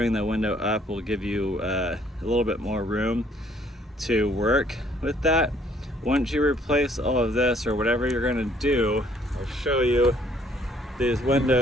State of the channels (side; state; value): both; normal; correlation 0.63